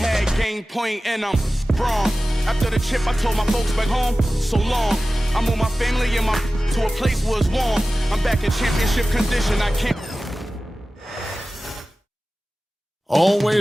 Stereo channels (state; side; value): normal; both; correlation 0.96